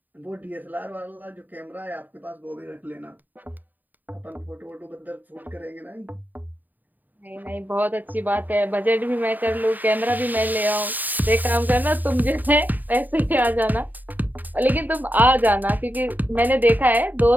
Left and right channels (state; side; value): late; left; 0.087 ms